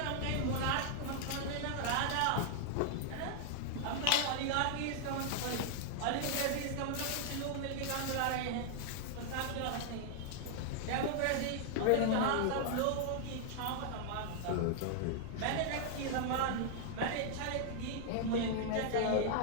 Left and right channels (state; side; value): different; both; correlation 0.00